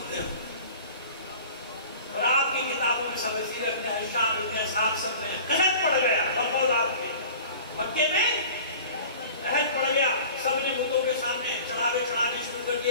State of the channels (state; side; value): inverted; both; correlation -0.42